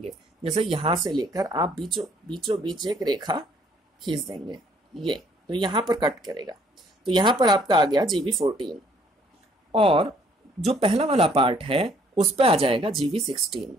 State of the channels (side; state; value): both; normal; correlation 0.62